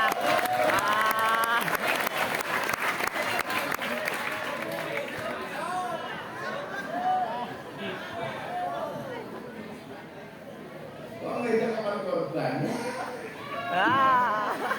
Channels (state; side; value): identical; both; correlation 1.00